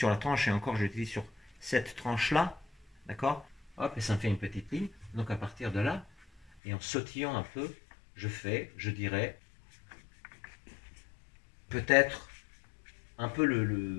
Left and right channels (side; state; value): right; drops out; at 6.4 s